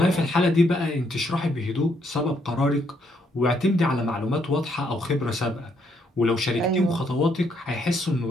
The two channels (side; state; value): both; normal; correlation 0.73